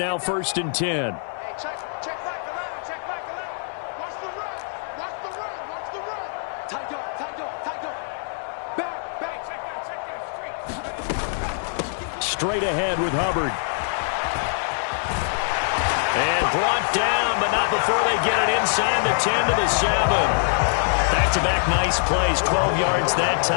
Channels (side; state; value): right; silent; 60 dB below the other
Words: 1st and 10. Straight ahead with Hubbard. And brought down, but not before they get it inside the 10 to the 7. Back-to-back nice plays, 12 yards that